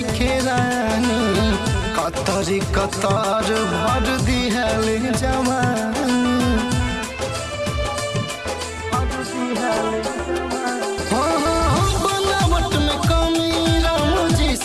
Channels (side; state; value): both; identical; correlation 1.00